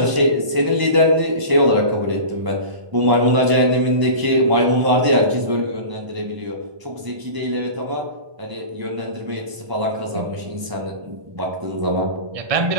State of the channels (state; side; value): late; left; 1.0 ms